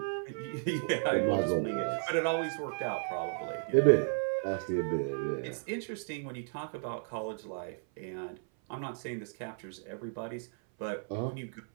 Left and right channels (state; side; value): silent; left; 55 dB below the other